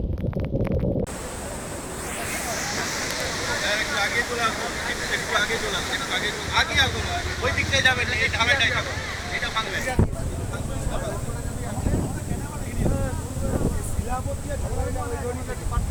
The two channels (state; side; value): identical; both; correlation 1.00